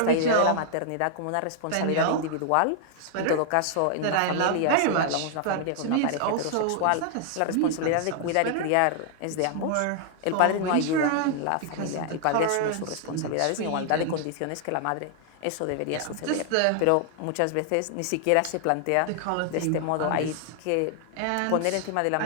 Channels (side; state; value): both; different; correlation 0.00